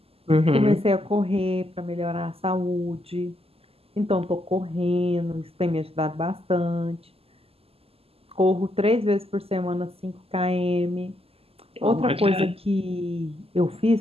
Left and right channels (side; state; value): left; late; 0.29 ms